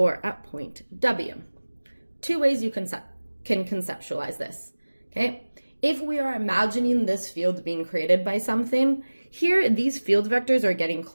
at point W, 2 ways you can conceptualize this, okay? If we are imagining this field being created by something, here these field vectors are getting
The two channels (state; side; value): inverted; both; correlation -1.00